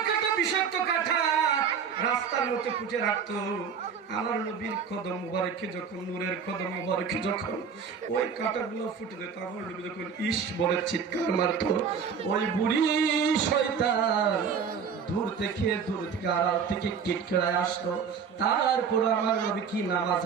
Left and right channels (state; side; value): quieter; left; 6.5 dB